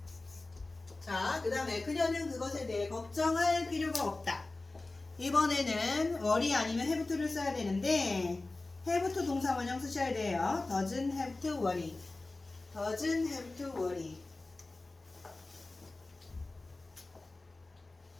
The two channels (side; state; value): right; quieter; 3.2 dB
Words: 자, 그 다음에 그녀는 그것에 대해 걱정할 필요가 없다. 이번에는 worry 아니면 have to를 써야 되는데 have to 동사 원형 쓰셔야 돼요. doesn't have to worry. doesn't have to worry.